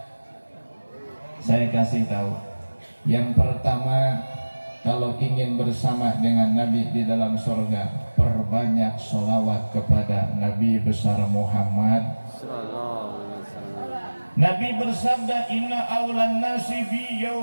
Saya kasih tahu. Yang pertama, kalau ingin bersama dengan Nabi di dalam surga, perbanyak sholawat kepada Nabi besar Muhammad. Nabi bersabda, inna awlan nasi bi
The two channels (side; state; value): both; inverted; correlation -1.00